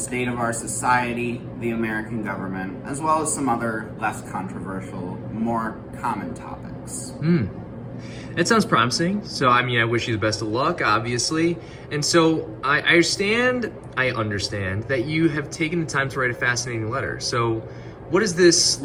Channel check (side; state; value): both; identical; correlation 1.00